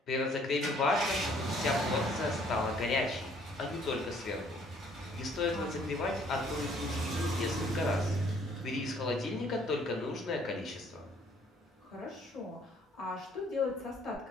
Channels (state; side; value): normal; both; correlation 0.61